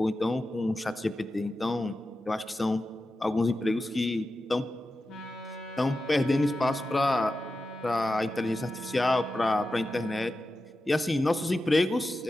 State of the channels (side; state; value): both; normal; correlation 0.92